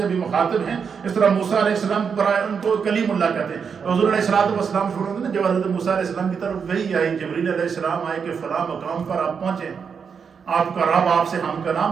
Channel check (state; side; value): quieter; left; 6.3 dB